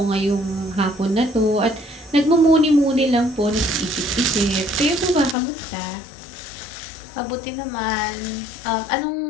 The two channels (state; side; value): drops out; right; at 5.4 s